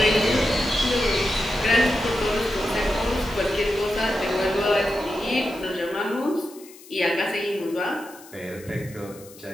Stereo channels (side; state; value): left; noise; hiss, 21 dB below the sound